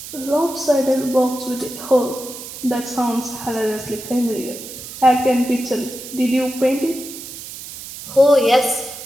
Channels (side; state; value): right; noise; hiss, 12 dB below the sound